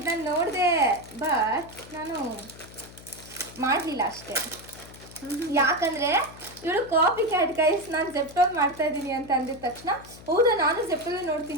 ನಾನು ನೋಡಿದೆ, ಬಟ್ ನಾನು ಮಾಡಲಿಲ್ಲ ಅಷ್ಟೇ. ಯಾಕಂದರೆ ಇವಳು ಕಾಪಿ ಕ್ಯಾಟ್ ಗೈಸ್. ನಾನು ಜೆಪ್ಟೋಲ್ ಮಾಡ್ತಾ ಇದ್ದೀನಿ ಅಂತ ಅಂದಿದ ತಕ್ಷಣ, ಹೌದಾ ನಾನು ಜೆಪ್ಟೋಲೇ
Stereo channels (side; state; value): left; noise; hum, 19 dB below the sound